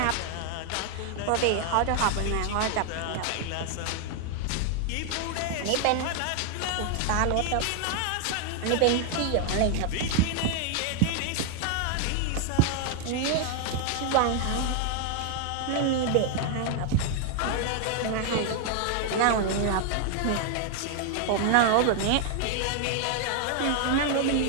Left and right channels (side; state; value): both; different; correlation 0.00